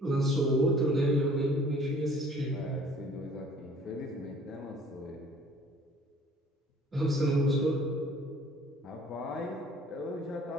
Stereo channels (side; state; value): both; normal; correlation 0.54